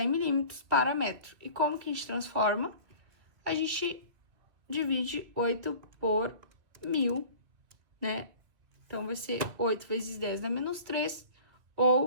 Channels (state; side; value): late; left; 2.7 ms